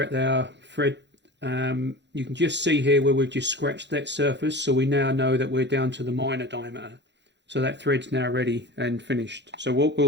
at our thread. You can just see here where we've just scratched that surface, so we now know that we're down to the minor diameter. So that thread's now ready and finished. So what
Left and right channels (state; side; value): late; left; 0.51 ms